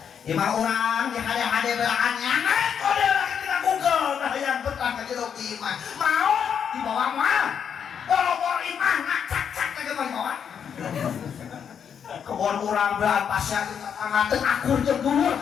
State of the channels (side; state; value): right; quieter; 7.7 dB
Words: imah orang yang ada belaannya, kau dia lagi tidak Google, nah yang betah ke jeruk imah, mau dibawa mah, boro-boro imah, ngacak-cak ke bawah. Kebon urang belaan pasya anggateun akur jeung dhuwur